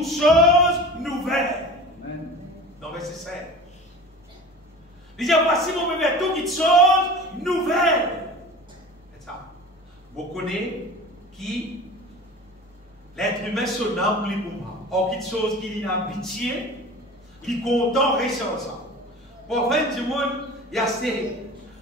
choses nouvelles. Amen. Dans verset 7. Il dit, voici, mon bébé, toutes choses nouvelles. C'est ça. Vous connaissez qui l'être humain se nomme lui pour moi. Or, quelque chose qui est en pitié, qui est content, reste ça. Pour faire du monde, il y a ce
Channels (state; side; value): normal; both; correlation 0.38